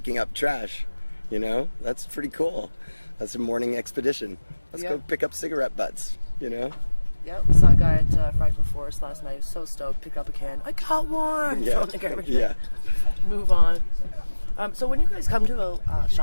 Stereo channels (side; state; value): both; inverted; correlation -1.00